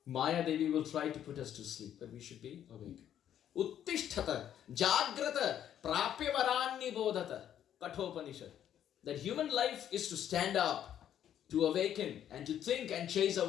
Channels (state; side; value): quieter; right; 10.3 dB